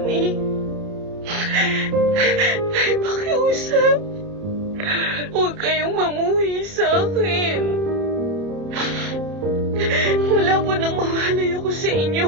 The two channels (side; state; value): left; late; 30 ms